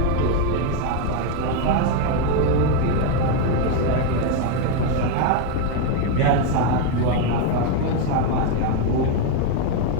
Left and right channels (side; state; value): both; different; correlation 0.01